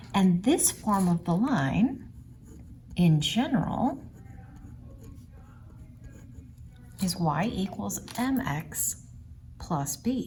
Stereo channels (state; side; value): identical; both; correlation 1.00